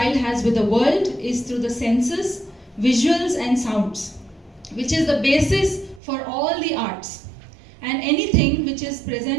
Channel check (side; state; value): left; drops out; at 6.0 s